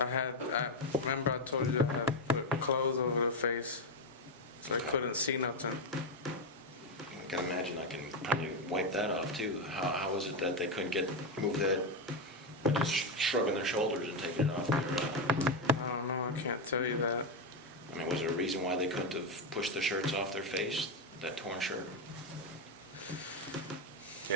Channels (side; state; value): both; normal; correlation 0.07